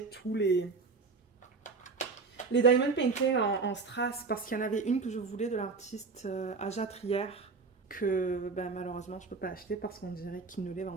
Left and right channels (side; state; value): left; quieter; 4.5 dB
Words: tous les les diamond painting en strass, parce qu'il y en avait une que je voulais de l'artiste Aja Trier, que ben, malheureusement je peux pas acheter parce qu'on dirait qu'ils ne les